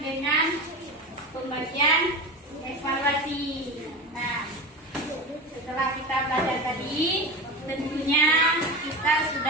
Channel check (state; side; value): normal; both; correlation 0.26